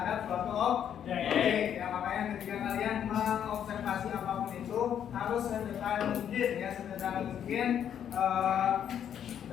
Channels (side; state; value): right; quieter; 9.2 dB